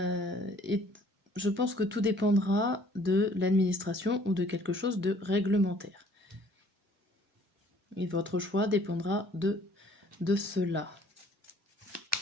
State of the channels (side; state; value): both; normal; correlation 0.57